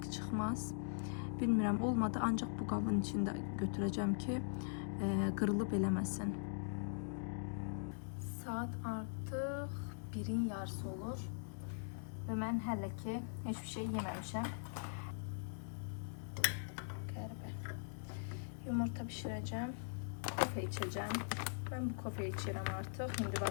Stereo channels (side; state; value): right; silent; digital silence